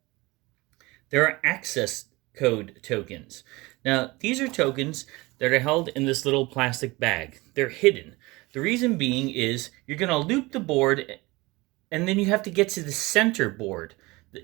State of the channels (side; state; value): left; quieter; 22.5 dB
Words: There are access code tokens. Now, these are tokens that are held in this little plastic bag. They're hidden. The reason being is you're going to loop the board, and then you have to get to the center board.